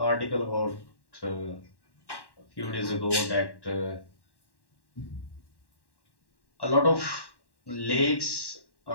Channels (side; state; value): right; late; 1.1 ms